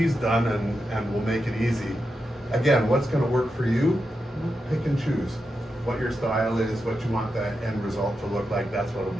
done and will make it easy. Again, what's going to work for you? Pick and choose what your style is, what you want that end result to look like. That's what will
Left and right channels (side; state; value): both; normal; correlation 0.88